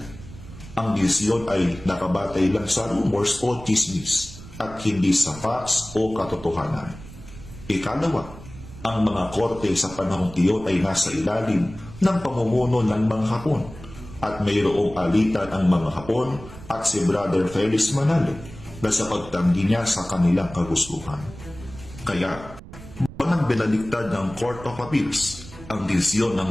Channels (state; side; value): noise; right; rumble, 16 dB below the sound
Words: Ang desisyon ay nakabatay lang sa rumors o chismis at hindi sa facts o katotohanan. Ikalawa, ang mga korte sa panahong iyon ay nasa ilalim ng pamumuno ng mga Hapon at mayroong alitan ang mga Hapon at si Brother Felix Manalo na sa pagtanggi niya sa kanilang kagustuhan. Kaya, walang binaliktad ng Court of Appeals ang desisyon ng